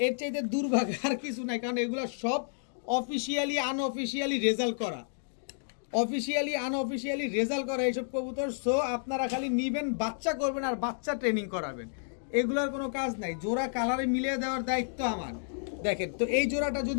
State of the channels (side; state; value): right; silent; digital silence